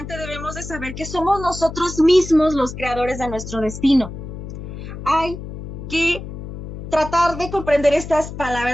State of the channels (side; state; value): left; noise; hum, 10 dB below the sound